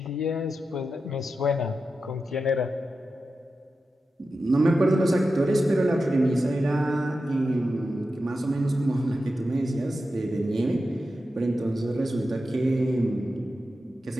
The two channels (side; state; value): both; normal; correlation 0.91